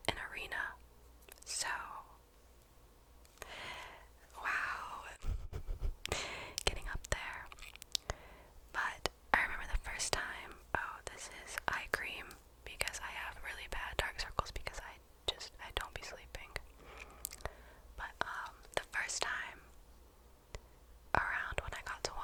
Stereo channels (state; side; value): identical; both; correlation 1.00